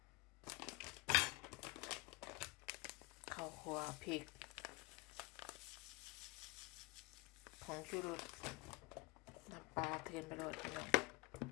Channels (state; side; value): quieter; right; 23.5 dB